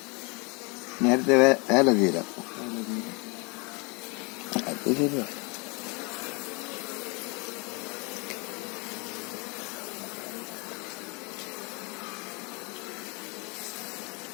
നേരത്തെ വേല തീരാം. അത് ശരിയാ.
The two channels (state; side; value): quieter; right; 30.1 dB